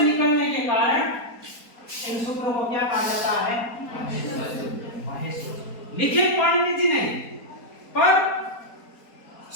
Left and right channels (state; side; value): late; right; 4.3 ms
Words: के कारण इन सूत्रों को क्या कहा जाता है? महेश्वर। लिखे पाणिनि जी ने, पर